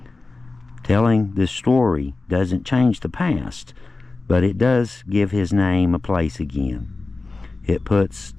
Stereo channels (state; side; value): quieter; right; 3.5 dB